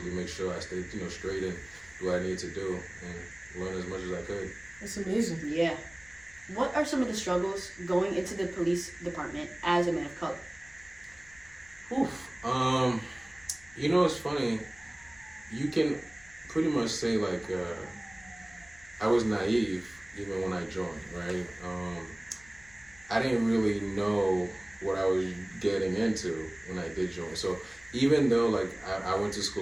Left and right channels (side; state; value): left; noise; rumble, 26 dB below the sound